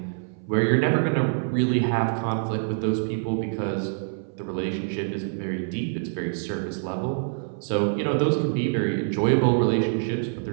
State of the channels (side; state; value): left; silent; 60 dB below the other